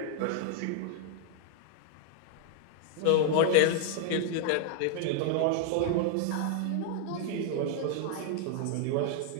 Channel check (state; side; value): different; both; correlation 0.00